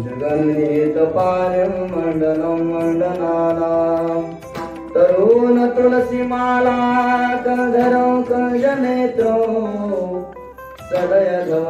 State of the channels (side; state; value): both; identical; correlation 1.00